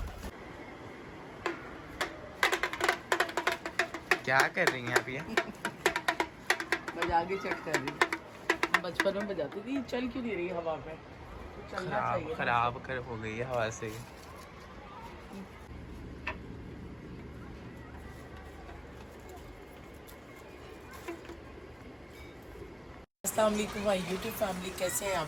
क्या कर रही हैं आप ये? बजा के चेक कर रही हूँ। बचपन में बजाती थी, चल क्यों नहीं रही हवा में? तो चलना चाहिए। खराब कर हो गई है हवा से। अस्सलाम वालेकुम भाई यूट्यूब फैमिली, कैसे हैं आप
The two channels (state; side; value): identical; both; correlation 1.00